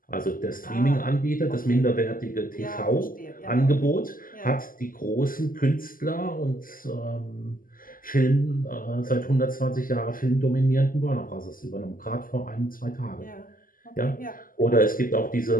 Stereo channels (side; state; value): right; late; 0.41 ms